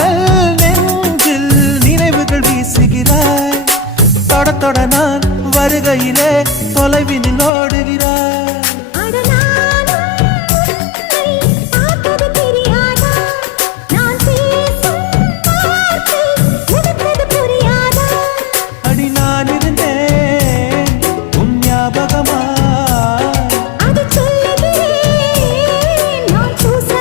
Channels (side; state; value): right; drops out; at 7.5 s